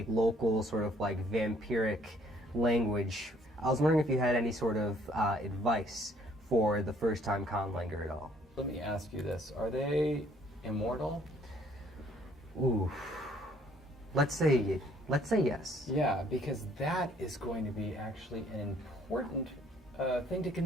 local sort of like vampiric language. I was wondering if you had any sort of advice for the first-time conlanger at all. Let me ask you this: are they immortal? Ooh, let's say yes. Yeah, because that is going to be actually an important thing to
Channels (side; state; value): both; normal; correlation 0.62